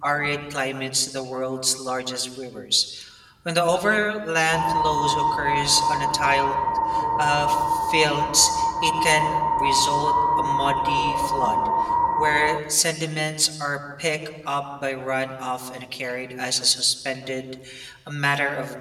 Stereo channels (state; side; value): identical; both; correlation 1.00